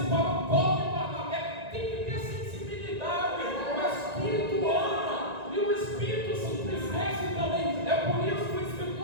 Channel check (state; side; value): late; left; 1.9 ms